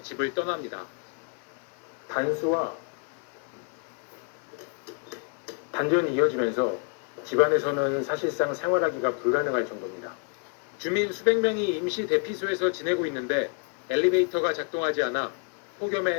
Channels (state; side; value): quieter; right; 39.9 dB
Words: 집을 떠납니다. 단수와 단전이 이어지면서 집안에서는 사실상 생활하기가 불가능할 정도입니다. 주민 수백 명이 임시 대피소에서 지내고 있는데 엘리베이터가 작동하지 않아